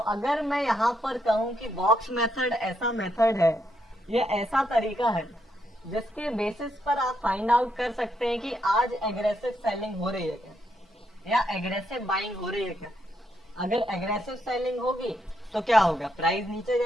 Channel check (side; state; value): both; normal; correlation 0.78